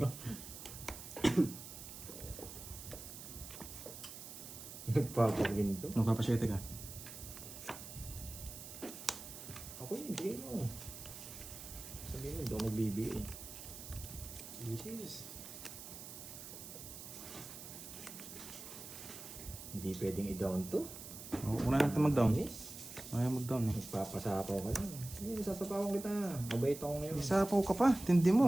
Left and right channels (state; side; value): noise; right; hiss, 12 dB below the sound